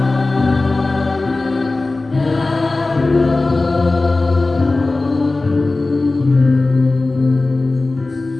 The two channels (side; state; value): right; quieter; 3.3 dB